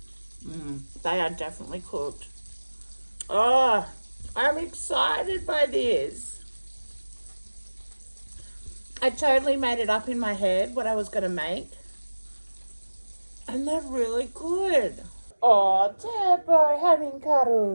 They are definitely cooked. Oh, I'm excited by this. I totally made it up in my head what I was going to make. And they're really good. Oh, Debo, having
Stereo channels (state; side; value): inverted; both; correlation -1.00